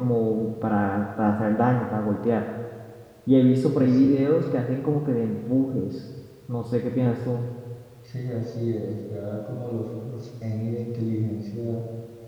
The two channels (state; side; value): identical; both; correlation 1.00